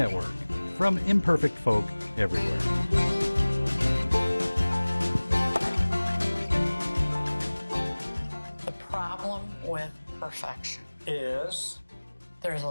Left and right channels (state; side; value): inverted; both; correlation -1.00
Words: from imperfect folk everywhere. The problem with perfection Is? there's a